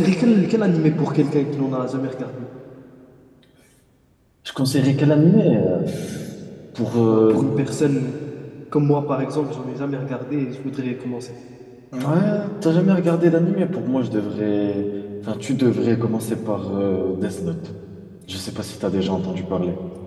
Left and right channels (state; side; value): identical; both; correlation 1.00